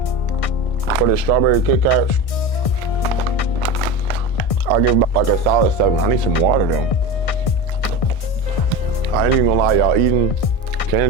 for the strawberry Kit Kats, I'll give about like a solid 7. I need some water though. I ain't even gonna lie, y'all, eating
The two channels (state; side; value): late; right; 1.6 ms